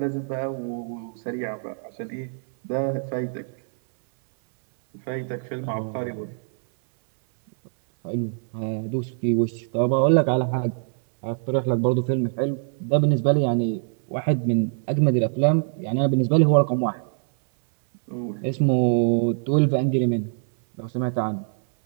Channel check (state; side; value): silent; left; 60 dB below the other